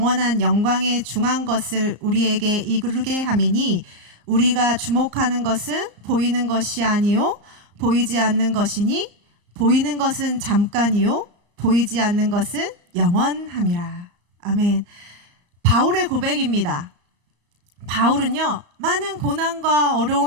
영광에 중한 것을 우리에게 이루게 함이니 우리가 주목하는 것은 보이는 것이 아니요 보이지 않는 것이니 보이는 것은 잠깐이요 보이지 않는 것은 영원함이라. 아멘. 바울의 고백입니다. 바울은요, 많은 고난과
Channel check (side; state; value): left; late; 34 ms